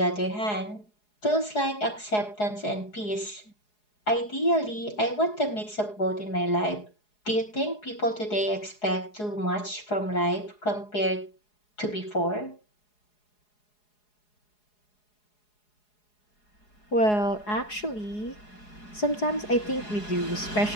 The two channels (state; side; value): late; right; 4.8 ms